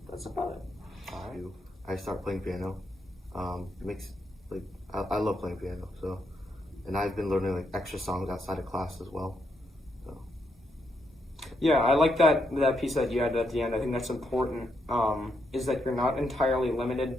that's about it. I start playing piano. It makes like I love playing piano. So, and I've been learning like extra songs outside of class as well. So. Yeah, I like that piece that you added at the end. I think that's important. Is that you're not entirely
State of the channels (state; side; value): normal; both; correlation 0.79